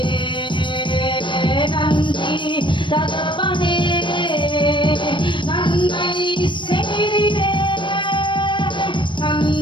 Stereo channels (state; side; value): late; right; 0.23 ms